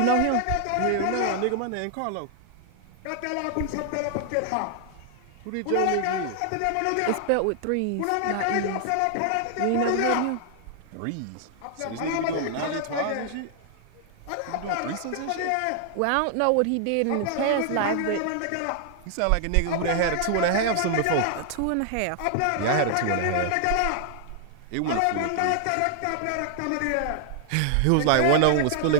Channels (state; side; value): different; both; correlation 0.00